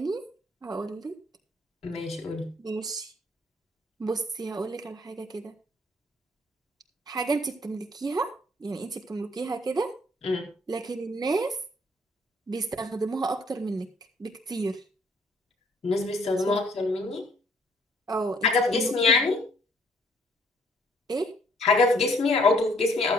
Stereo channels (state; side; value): normal; both; correlation 0.63